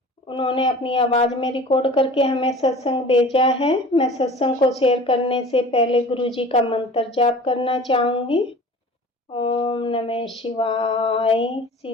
उन्होंने अपनी आवाज में रिकॉर्ड करके हमें सत्संग भेजा है। मैं सत्संग को शेयर करने से पहले गुरु जी का मंत्र जाप करना चाहूंगी। ओम नमः शिवाय,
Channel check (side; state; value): both; normal; correlation 0.42